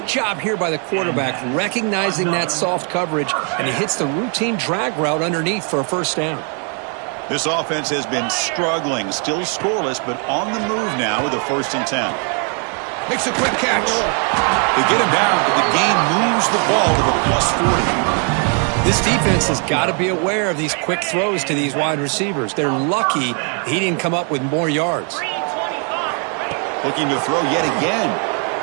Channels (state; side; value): quieter; left; 39.8 dB